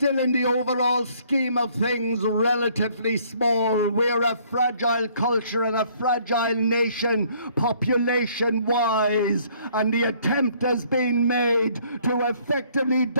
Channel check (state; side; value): inverted; both; correlation -0.62